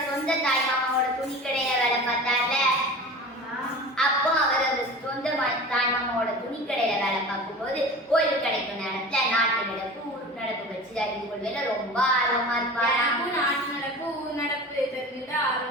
சொந்த தாய்மாமாவோட துணிக்கடையில வேலை பார்த்தார்ல, அப்போ அவர் அந்த சொந்த தாய்மாமாவோட துணிக்கடையில வேலை பார்க்கும்போது ஓய்வு கிடைக்கும் நேரத்துல நாட்டு நடப்பு ஊர் நடப்பு வச்சு அறிந்து கொள்வதில ரொம்ப ஆர்வமா இருப்பாரு. நாட்டு நடப்பு ஊர் நடப்பு தெரிஞ்சுட்டு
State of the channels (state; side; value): normal; both; correlation 0.36